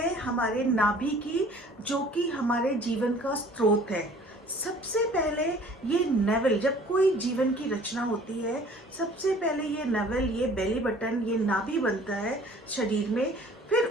हमारे नाभि की, जो कि हमारे जीवन का स्रोत है। सबसे पहले ये नेवल, जब कोई जीवन की रचना होती है, सबसे पहले ये नेवल, ये बेली बटन, ये नाभि बनता है शरीर में। फिर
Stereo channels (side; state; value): both; normal; correlation 0.51